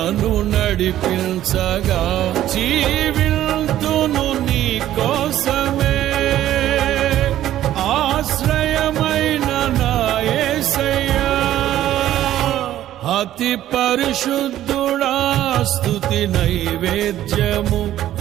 నడిపించగా, జీవింతును నీ కోసమే ఆశ్రయమైన నా యేసయ్యా. అతి పరిశుద్ధుడా స్తుతి నైవేద్యము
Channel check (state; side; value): quieter; left; 12.8 dB